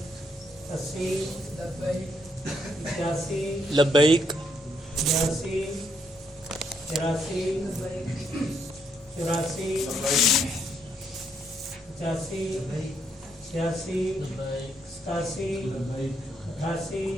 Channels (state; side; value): normal; both; correlation 0.75